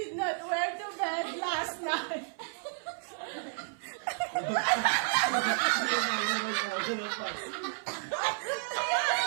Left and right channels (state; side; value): silent; left; 57 dB below the other